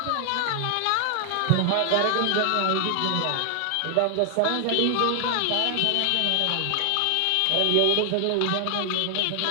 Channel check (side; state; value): both; different; correlation 0.00